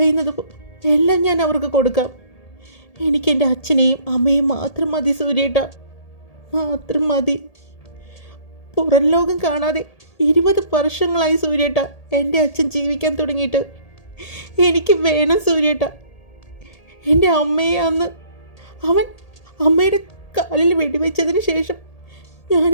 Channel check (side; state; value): right; late; 1.8 ms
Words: എല്ലാം ഞാൻ അവർക്ക് കൊടുക്കാം. എനിക്കെൻ്റെ അച്ഛനെയും അമ്മയും മാത്രം മതി സൂര്യേട്ടാ, മാത്രം മതി. പുറം ലോകം കാണാതെ 20 വർഷങ്ങളായി സൂര്യേട്ടാ എൻ്റെ അച്ഛൻ ജീവിക്കാൻ തുടങ്ങിയിട്ട്. എനിക്ക് വേണം സൂര്യേട്ട. എൻ്റെ അമ്മയെ അന്ന് അവൻ അമ്മയുടെ കാലിൽ വെടിവെച്ചതിന് ശേഷം ഞാൻ